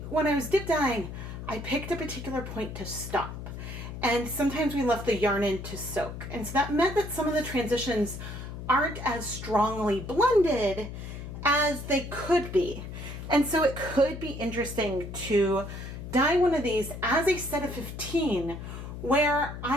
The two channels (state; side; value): noise; left; hum, 9 dB below the sound